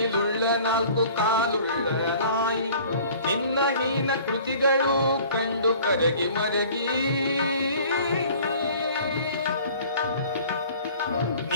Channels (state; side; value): inverted; both; correlation -0.49